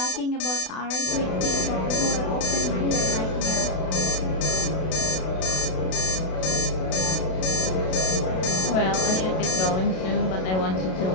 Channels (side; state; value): right; late; 32 ms